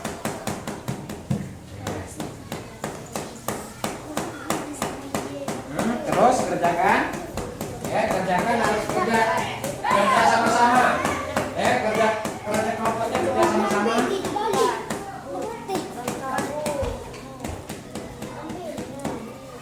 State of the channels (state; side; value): identical; both; correlation 1.00